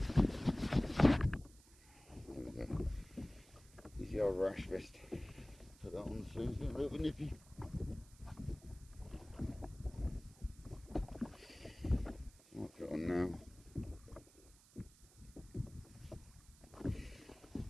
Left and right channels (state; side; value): noise; right; hiss, 24 dB below the sound